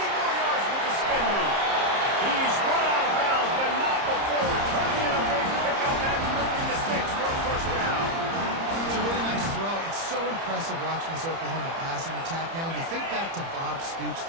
more yards with the spin move. He's run out of bounds, but not before turning in a big pickup and moving the sticks for a 1st down. It's a really nice throw. It's so impressive watching this Oklahoma passing attack now. You think back to Bob Stoops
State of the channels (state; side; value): late; left; 30 ms